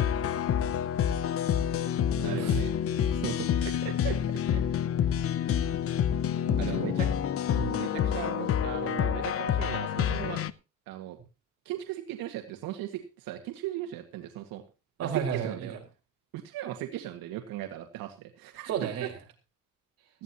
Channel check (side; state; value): right; quieter; 4.9 dB